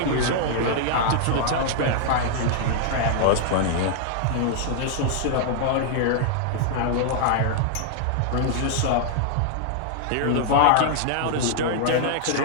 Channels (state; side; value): different; both; correlation -0.01